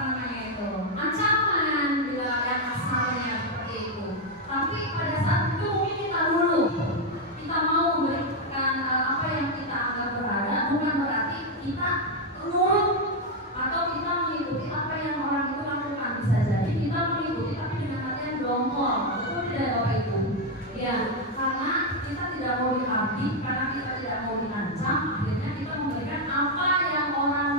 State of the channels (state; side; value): normal; both; correlation 0.04